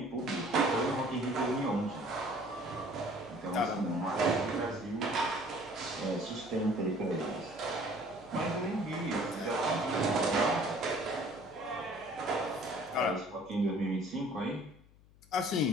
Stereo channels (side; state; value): left; noise; hum, 25 dB below the sound